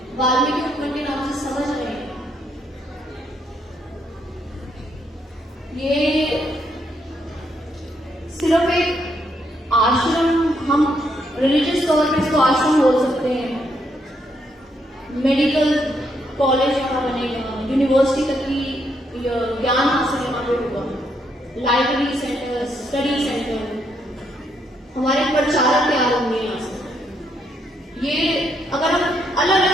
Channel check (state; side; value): normal; both; correlation 0.75